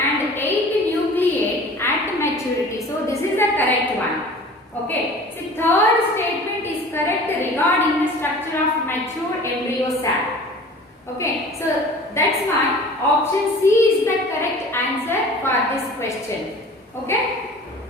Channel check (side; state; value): both; normal; correlation 0.43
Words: and 8 nucleate at maturity. So this is the correct one. Okay. So third statement is correct regarding the structure of mature embryo sac. Okay. So that's why option C is the correct answer for this question. Okay.